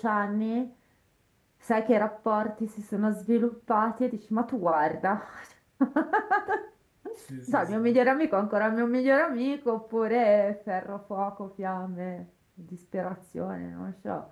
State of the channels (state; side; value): identical; both; correlation 1.00